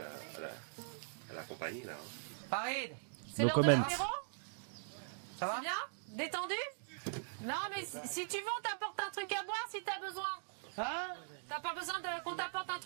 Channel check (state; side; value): silent; left; digital silence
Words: à la compagnie là. Hein. Farid, C'est No l'heure de comment. l'apéro? ça va? C'est bien? Détendu? Non, mais si tu veux, on t'apporte un truc à boire si t'as besoin. Hein? T'as pas besoin qu'on t'apporte un